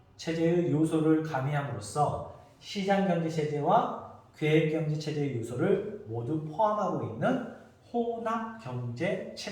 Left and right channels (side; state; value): both; identical; correlation 1.00